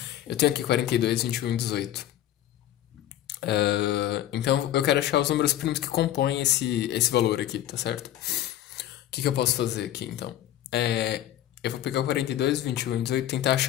Eu tenho aqui 42, 21 e 18. Então eu quero achar os números primos que compõem esse valor aqui, tá certo? O que eu posso fazer aqui então? Eu vou pegar o 42, 21 e 18 e tentar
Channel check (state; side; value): quieter; right; 12.6 dB